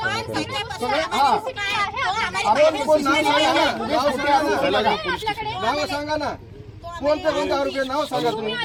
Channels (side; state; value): both; identical; correlation 1.00